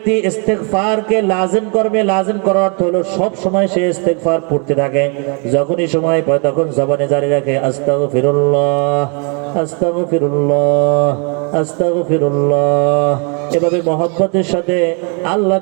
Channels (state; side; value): quieter; left; 36.6 dB